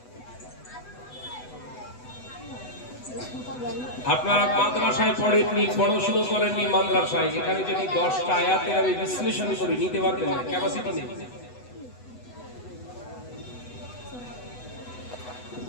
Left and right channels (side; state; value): right; late; 8.0 ms